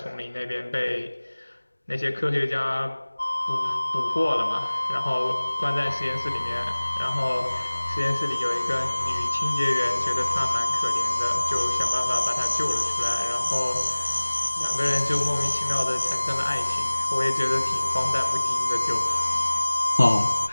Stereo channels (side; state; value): both; inverted; correlation -1.00